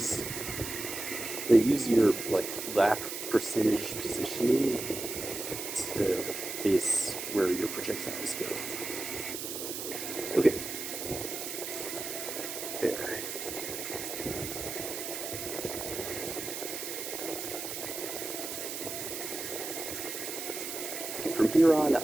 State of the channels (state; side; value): noise; right; hiss, 6 dB below the sound